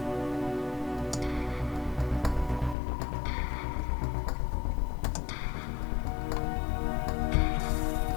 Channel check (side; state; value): right; drops out; at 2.8 s